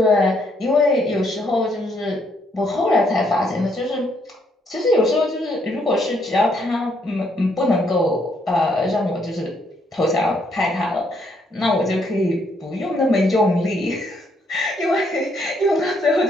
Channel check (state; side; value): normal; both; correlation 0.72